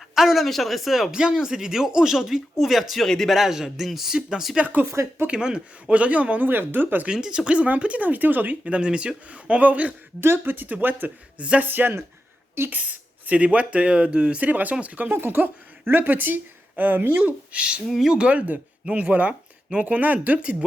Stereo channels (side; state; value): both; normal; correlation 0.89